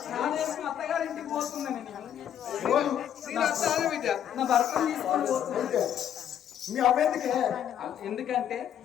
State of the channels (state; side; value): quieter; right; 9.8 dB